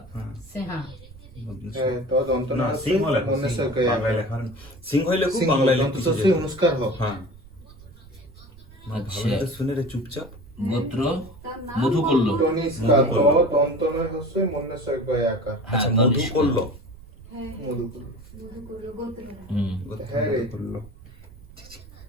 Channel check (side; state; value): right; noise; rumble, 21 dB below the sound